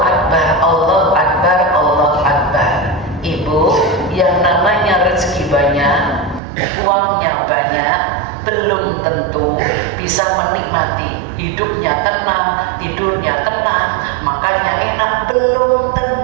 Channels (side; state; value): left; drops out; at 6.4 s